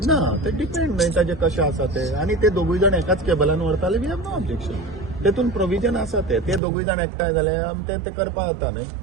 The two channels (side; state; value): left; drops out; at 6.6 s